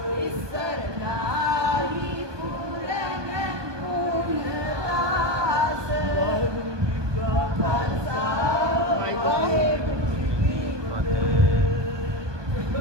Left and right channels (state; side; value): late; left; 1.2 ms